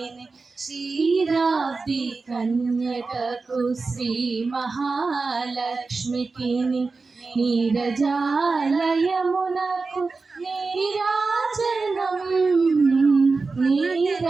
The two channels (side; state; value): left; quieter; 4.1 dB